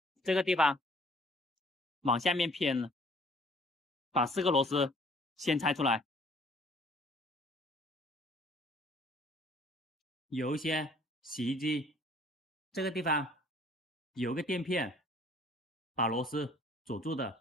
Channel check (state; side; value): normal; both; correlation 0.57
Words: 这个地方往下面偏了。把4个螺丝先拆出来。有一些洗衣机这个地方有个垫片把螺丝锁住